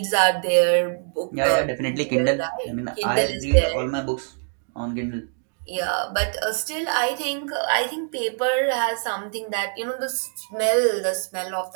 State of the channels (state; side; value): silent; left; 58 dB below the other